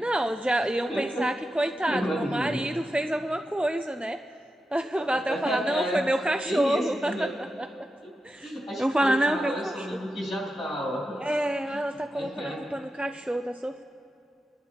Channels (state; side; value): normal; both; correlation 0.89